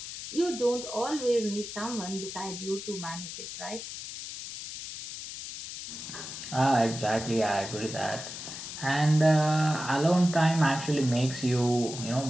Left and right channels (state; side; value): noise; left; hiss, 9 dB below the sound